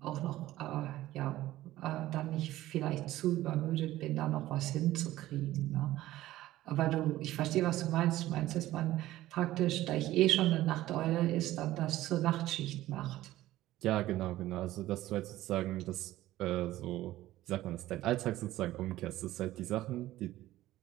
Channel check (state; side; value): quieter; left; 15.4 dB